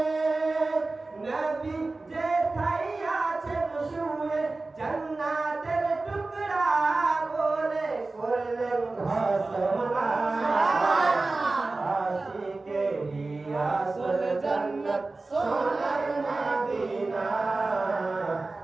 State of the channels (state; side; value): quieter; left; 3.4 dB